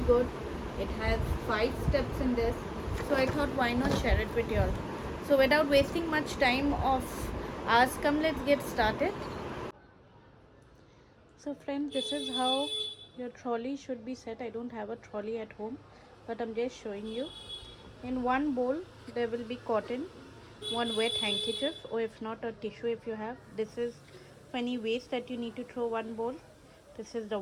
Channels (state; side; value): identical; both; correlation 1.00